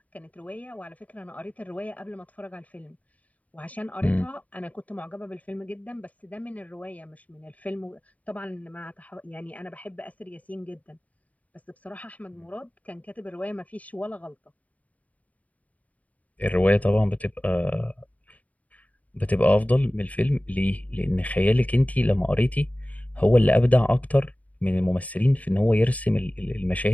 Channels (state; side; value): late; right; 0.071 ms